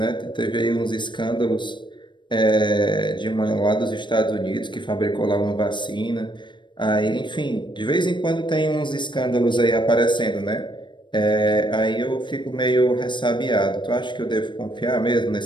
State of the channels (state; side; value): late; right; 0.22 ms